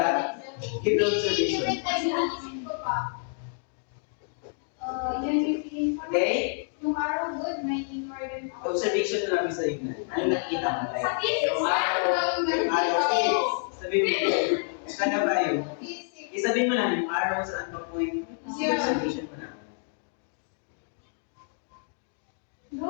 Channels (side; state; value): right; silent; 59 dB below the other